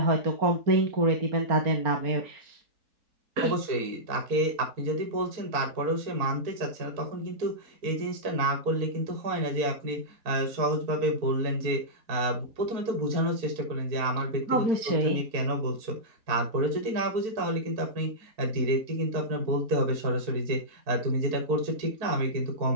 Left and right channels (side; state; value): left; late; 4.5 ms